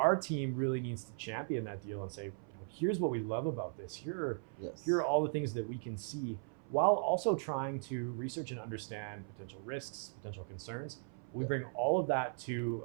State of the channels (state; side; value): silent; left; 52 dB below the other